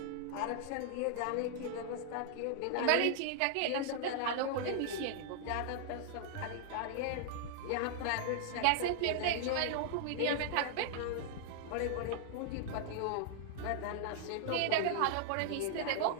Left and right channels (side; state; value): both; different; correlation -0.01